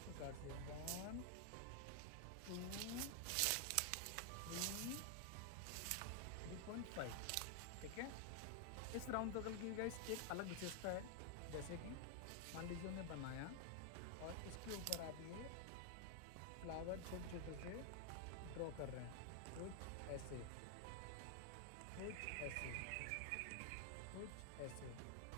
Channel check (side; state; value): both; different; correlation 0.00